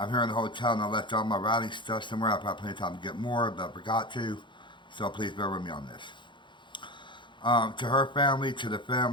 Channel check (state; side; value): late; right; 0.23 ms